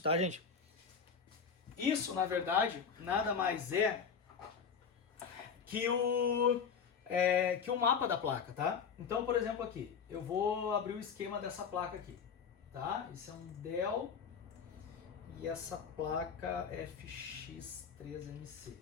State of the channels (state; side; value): quieter; right; 6.4 dB